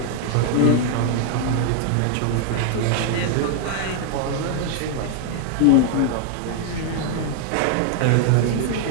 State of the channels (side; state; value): both; different; correlation 0.00